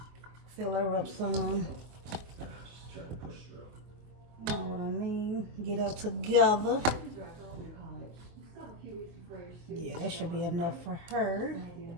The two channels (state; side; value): late; left; 24 ms